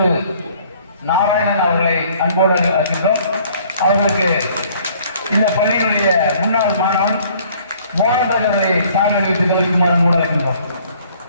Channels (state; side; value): inverted; both; correlation -0.58